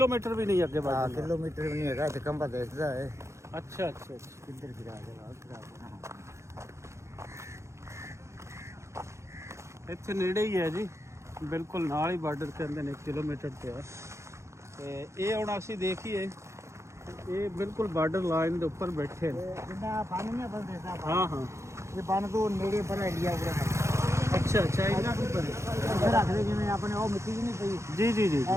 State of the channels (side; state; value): left; late; 0.14 ms